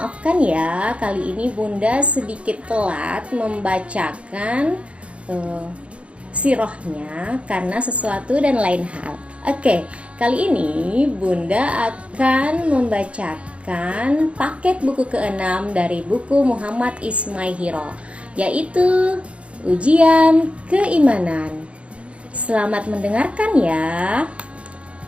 ya, kali ini Bunda sedikit telat membacakan sirahnya karena sesuatu dan lain hal. Oke, kali ini Bunda akan membacakan paket buku ke-6 dari buku Muhammad Ismail, yaitu Ujian Keimanan. Selamat mendengarkan ya.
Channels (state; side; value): late; left; 0.061 ms